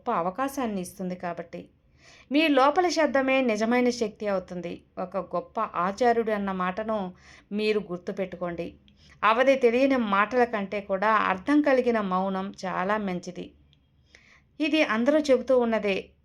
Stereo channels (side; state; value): both; identical; correlation 1.00